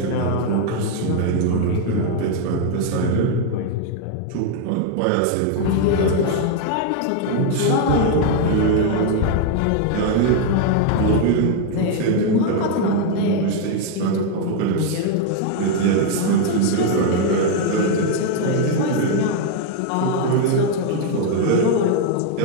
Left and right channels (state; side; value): different; both; correlation 0.00